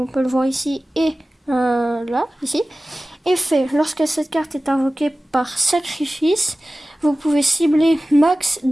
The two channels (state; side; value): normal; both; correlation 0.96